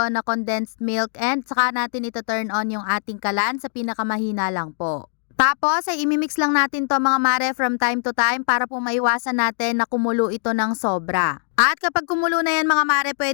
na condensed milk, and saka natin ito turn on yung ating kalan sa pinakamahina lang po. Tapos ay imimix lang natin to mga mare from time to time para po maiwasan natin na kumulo ito ng sobra. At kapag kumulo na yan mga mare,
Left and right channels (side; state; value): right; silent; digital silence